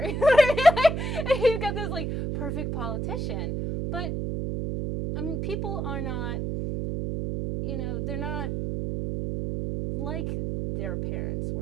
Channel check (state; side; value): noise; right; hum, 2 dB below the sound